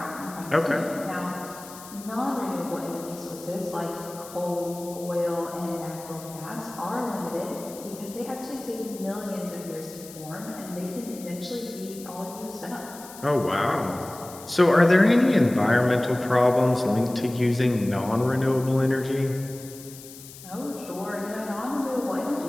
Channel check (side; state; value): left; noise; hiss, 16 dB below the sound